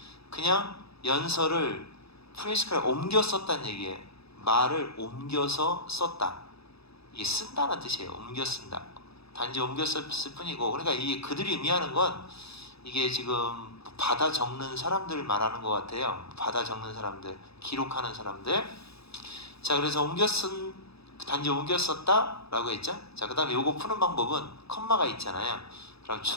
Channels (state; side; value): late; right; 0.78 ms